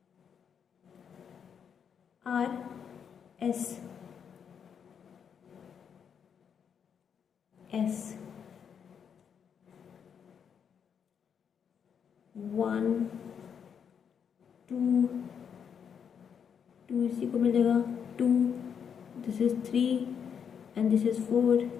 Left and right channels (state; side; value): quieter; right; 7.4 dB